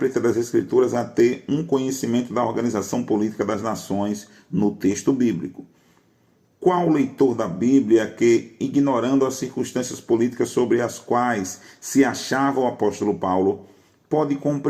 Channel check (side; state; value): both; identical; correlation 1.00